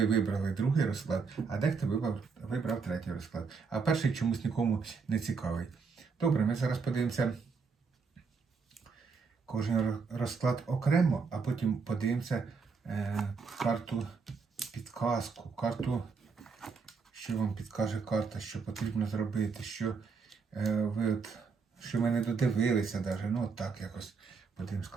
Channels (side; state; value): left; quieter; 5.2 dB